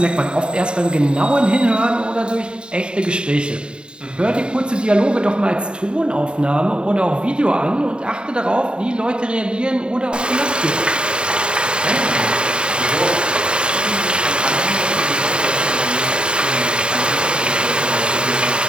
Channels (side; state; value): left; late; 0.051 ms